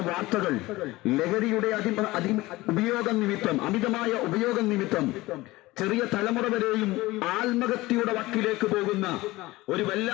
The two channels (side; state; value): right; quieter; 19.5 dB